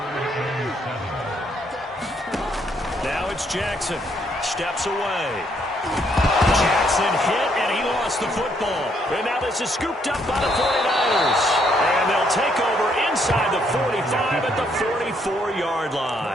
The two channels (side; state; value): both; normal; correlation 0.71